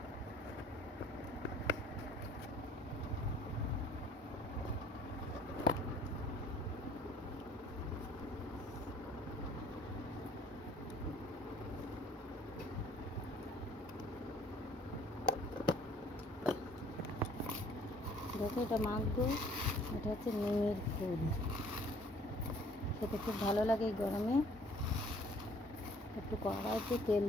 দেখো, এটা মাখবো। এটা হচ্ছে নিমের ফুল, খেতে খুব ভালো লাগে এই গরমে। একটু কড়াইতে তেল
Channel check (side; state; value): both; normal; correlation 0.56